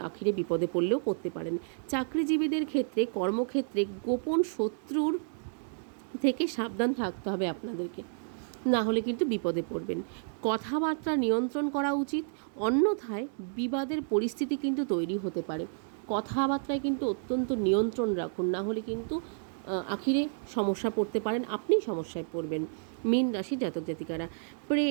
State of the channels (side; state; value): left; silent; digital silence